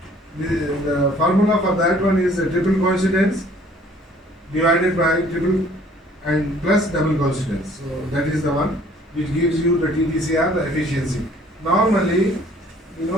The formula for that one is the triple coincidence divided by triple and plus double coincidence. So that is the one which gives you the TTCR, the efficiency. Normally,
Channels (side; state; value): both; normal; correlation 0.56